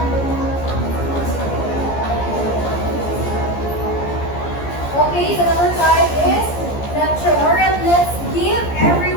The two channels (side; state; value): right; late; 14 ms